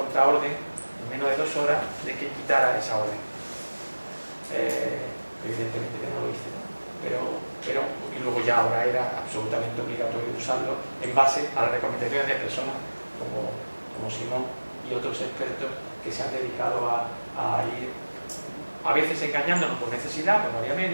en menos de 2 horas de que quitara esa orden. Evidentemente que no lo hice, ¿no? Pero y luego ya ahora era absolutamente obligatorio usarlo en base a las recomendaciones de personas como Simón y otros expertos que se han dedicado a ir a veces engañándonos por necesidad, pues no había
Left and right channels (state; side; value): inverted; both; correlation -1.00